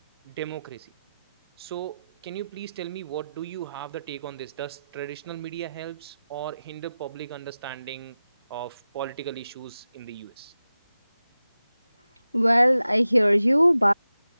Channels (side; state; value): both; inverted; correlation -0.94